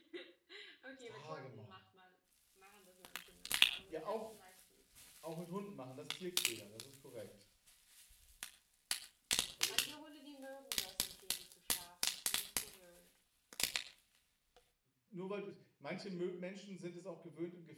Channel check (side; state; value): both; identical; correlation 1.00